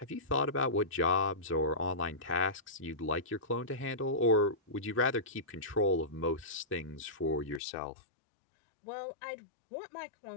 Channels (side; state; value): right; drops out; at 7.6 s